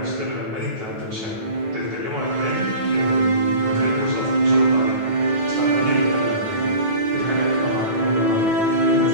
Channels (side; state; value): left; late; 9.2 ms